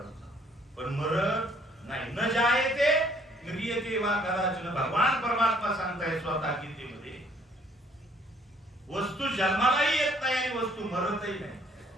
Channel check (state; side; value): normal; both; correlation 0.62